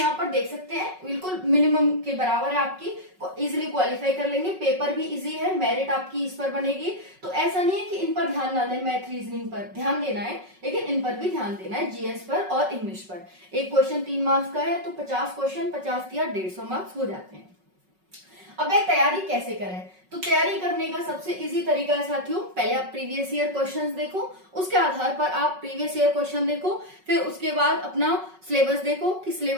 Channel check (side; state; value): left; late; 5.4 ms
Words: पर देख सकते हैं बिल्कुल मिनिमम के बराबर है आपकी, इजिली क्वालिफाई कर लेंगे। पेपर भी इजी है, मेरिट आपकी इस पर बनेगी। तो ऐसा नहीं है कि इन पर ध्यान ना दें, मैथ रीजनिंग पर ध्यान देना है, लेकिन इन पर भी ध्यान देना है, जीएस पर और इंग्लिश पर। एक क्वेश्चन 3 मार्क्स का है, तो 50 क्वेश्चन 50 या 150 मार्क्स हो जाते हैं। अब तैयारी कैसे करें, तो तैयारी करने का सबसे इजी तरीका है साथियों, पहले आप प्रीवियस ईयर क्वेश्चंस देखो, उसके आधार पर आप प्रीवियस ईयर क्वेश्चन देखो, फिर उसके बाद अपना सिलेबस देखो कि